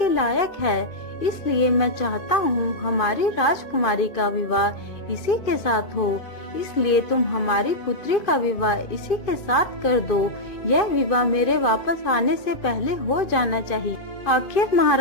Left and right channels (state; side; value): late; right; 2.5 ms